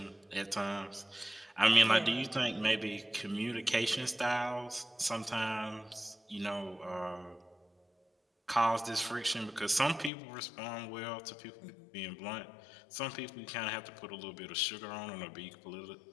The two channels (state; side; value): drops out; right; at 10.1 s